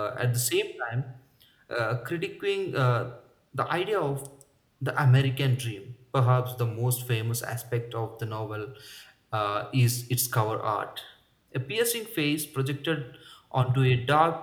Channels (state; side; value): identical; both; correlation 1.00